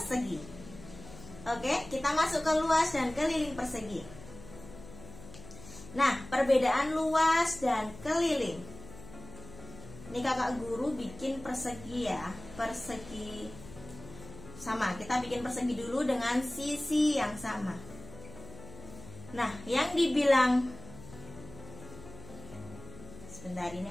Oke, kita masuk ke luas dan keliling persegi. Nah, perbedaan luas dan keliling. Ini Kakak Guru bikin persegi ya, persegi sama. Kita bikin persegi dulu dengan sisi yang sama. Nah, yang dibilang, sebentar,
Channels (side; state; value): left; noise; hum, 16 dB below the sound